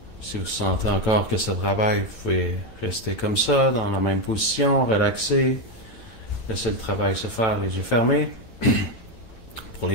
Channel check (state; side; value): late; right; 9.0 ms